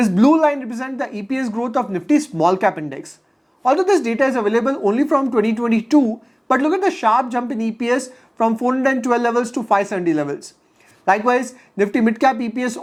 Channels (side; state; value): both; identical; correlation 1.00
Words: blue line represents the EPS growth of Nifty small cap index. Although this data is available only from 2022, but look at the sharp jump in EPS from 412 levels to 570 levels. Likewise, Nifty mid cap EPS